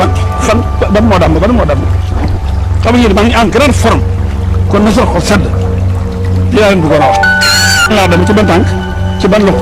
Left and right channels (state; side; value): identical; both; correlation 1.00